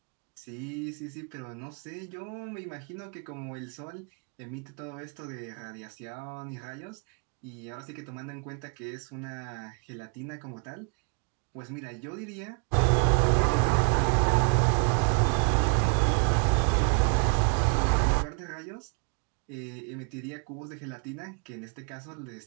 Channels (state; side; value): quieter; left; 37.9 dB